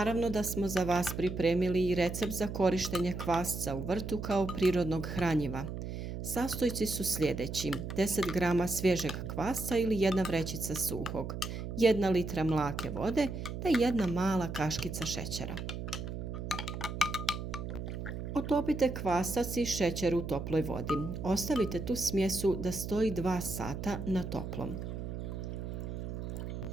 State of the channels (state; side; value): noise; right; hum, 6 dB below the sound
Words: da smo za vas pripremili i recept za korištenje kvasca u vrtu kao prirodnog hranjiva. Sastojci su sljedeći: 10 grama svježeg kvasca ili 1 vrećica suhog, 1 litra mlake vode te 1 mala kaškica šećera. Otopite kvasac i šećer u toploj vodi. Ostavite tu smjesu da stoji 2 sata na toplom.